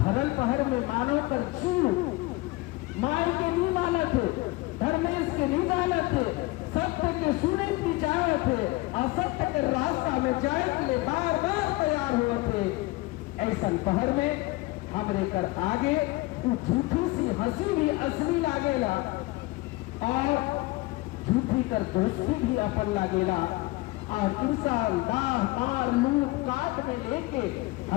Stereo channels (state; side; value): quieter; right; 21.2 dB